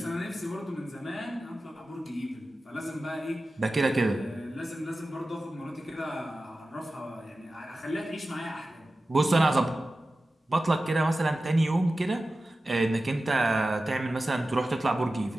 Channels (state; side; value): normal; both; correlation 0.94